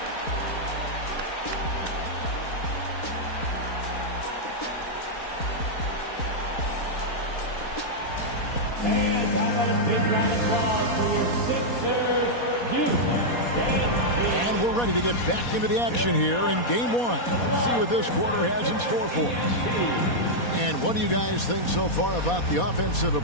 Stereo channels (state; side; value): late; right; 4.2 ms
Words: And we're ready to get back into the action here in game one. Let's see what this quarter has in store for us. And what do you guys think so far about the offensive